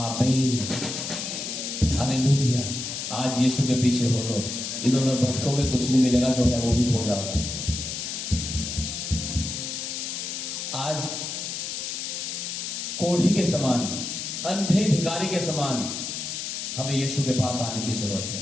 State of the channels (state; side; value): noise; left; hiss, 5 dB below the sound